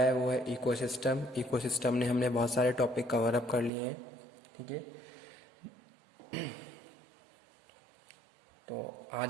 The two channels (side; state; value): left; drops out; at 3.7 s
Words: वो है इकोसिस्टम। इकोसिस्टम ने हमने बहुत सारे टॉपिक कवर अप कर लिए हैं, ठीक है। तो